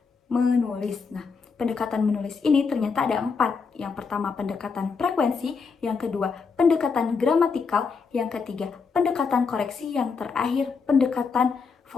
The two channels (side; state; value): right; quieter; 5.2 dB